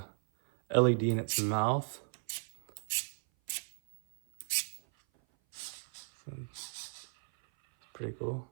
LED in its mouth. Pretty cool.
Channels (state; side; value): silent; left; 54 dB below the other